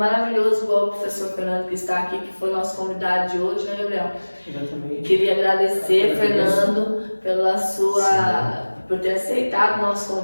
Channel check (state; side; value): inverted; both; correlation -1.00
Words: igual o professor Fernando que está aqui, que foi nosso convidado de hoje, né, Gabriel? Exatamente. Queria agradecer, Fernando, por ter aceitado o nosso